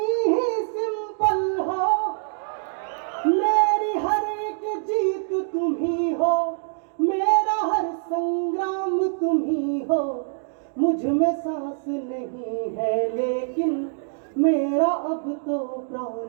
ही सिंपल हो, मेरी हर एक जीत तुम ही हो, मेरा हर संग्राम तुम ही हो, मुझ में सांस नहीं है लेकिन मेरा अब तो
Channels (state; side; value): silent; left; digital silence